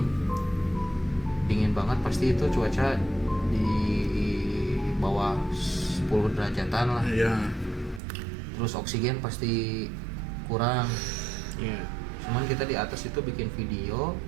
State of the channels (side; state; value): left; drops out; at 8.0 s